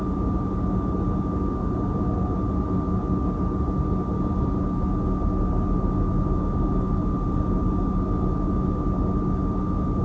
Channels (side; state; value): both; identical; correlation 1.00